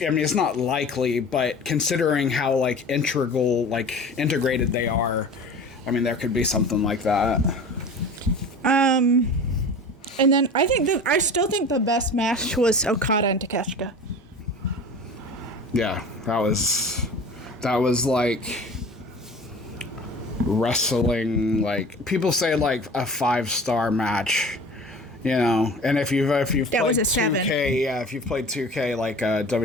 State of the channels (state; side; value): normal; both; correlation 0.38